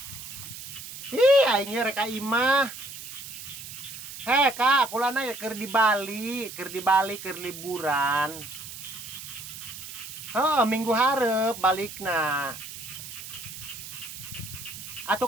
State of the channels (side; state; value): right; noise; hiss, 11 dB below the sound